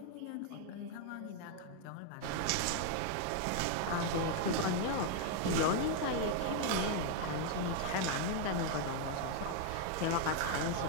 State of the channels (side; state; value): both; different; correlation 0.00